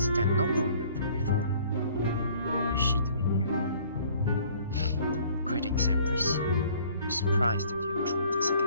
that noblewoman from before. What is she doing here? Greetings, Empress. We're surprised that you have joined us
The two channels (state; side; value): inverted; both; correlation -0.55